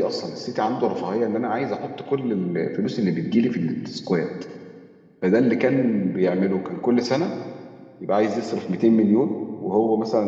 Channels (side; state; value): both; identical; correlation 1.00